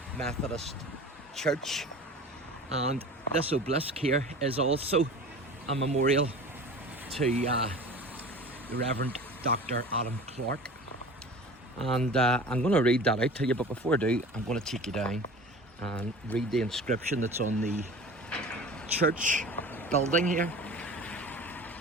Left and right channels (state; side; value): normal; both; correlation 0.39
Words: Methodist Church, and this obelisk here is also a memorial to the Reverend Dr. Adam Clarke. And I'm going to read that out to you, but before I do, I'm going to take you down and read the inscription that's on the church building here.